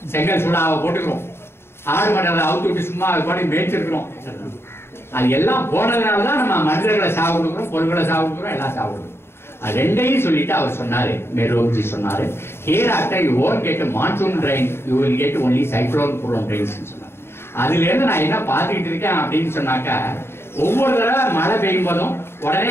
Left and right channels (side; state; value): right; late; 0.12 ms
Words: செங்கல் சூடாவை போட்டுக்கிறோம், ஆடு மண்டல அவுத்து விட்டு சும்மா அது பாட்டி மேய்ச்சிருக்கிறோம். அது எல்லாம் போனதுனாலதான் நம்ம மனிதர்களை சாவு கொடுக்குறோம், பொருள்களை சாவு கொடுக்குறோம், எல்லாம் சாவு கொடுக்குறோம். அது ரெண்டையும் சொல்லிட்டு அவர் சொன்னாரு, மெரோஜி சொன்னாரு, here after you won't get a monsoon rain, you will get only cyclone prone rains சொன்னார். அதுல இருந்து நான் என்ன பார்த்துக்கிட்டு இருக்கேன் அப்படின்னு சொன்னாக்கா, ஒவ்வொரு தடவை மழை பெய்யும் போதும்